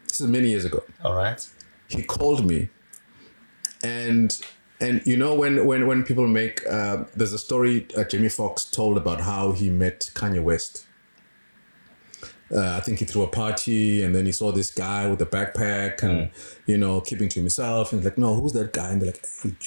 This is many years ago. All right. He called me, and you know when people make there's a story Jamie Foxx told about how he met Kanye West. I think he threw a party and then he saw this guy with a backpack and, keeping to himself. And he's like, no, who's that guy? And they're like, hey,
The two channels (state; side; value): inverted; both; correlation -1.00